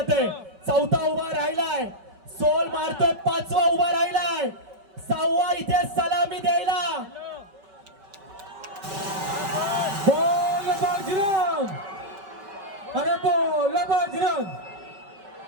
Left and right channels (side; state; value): left; late; 5.2 ms